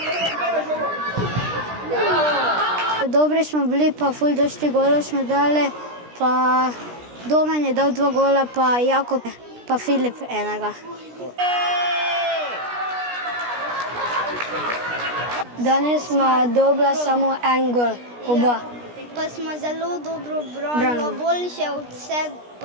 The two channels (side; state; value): left; late; 17 ms